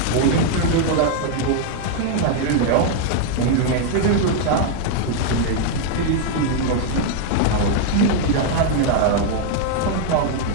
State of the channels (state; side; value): different; both; correlation 0.00